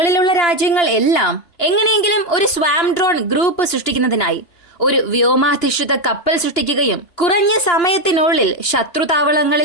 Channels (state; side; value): late; right; 2.9 ms